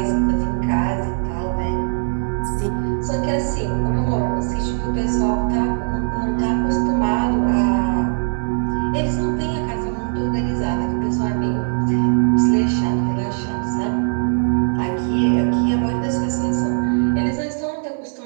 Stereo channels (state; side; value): silent; left; digital silence